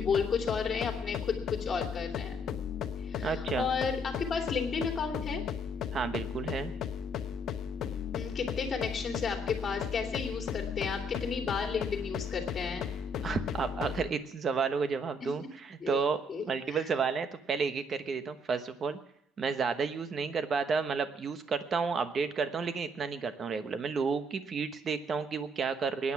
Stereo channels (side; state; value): both; normal; correlation 0.67